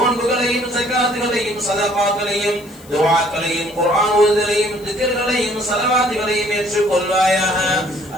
ஸகாத்துகளையும் சதகாக்களையும் துஆக்களையும் குர்ஆன் ஓதுதலையும் திக்ர்களையும் ஸலவாத்துகளையும் ஏற்றுக்கொள்வாயாக.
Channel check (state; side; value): noise; left; hiss, 23 dB below the sound